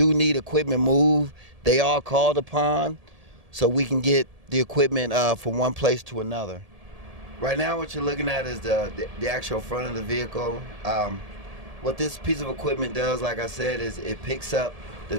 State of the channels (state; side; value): late; left; 1.7 ms